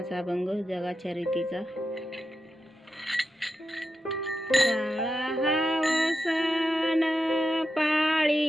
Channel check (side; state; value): both; normal; correlation 0.88